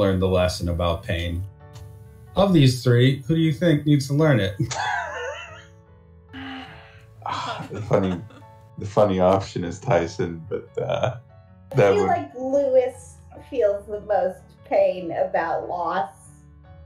the lesson about pain. Of these three, who do you think needs to learn it? The funny option is Tyson, but I feel like Lewis feels the most pain about loss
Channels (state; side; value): identical; both; correlation 1.00